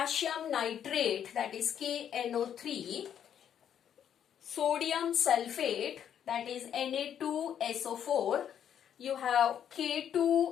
nitrate, that is KNO3, sodium sulfate, that is Na2SO4, you have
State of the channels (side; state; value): right; quieter; 9.2 dB